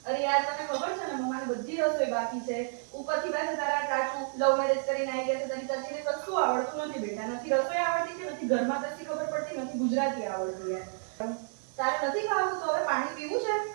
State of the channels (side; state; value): left; silent; digital silence